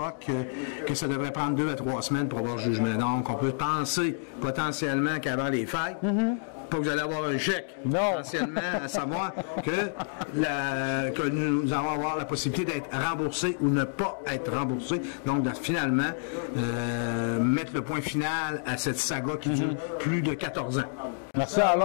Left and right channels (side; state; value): right; silent; digital silence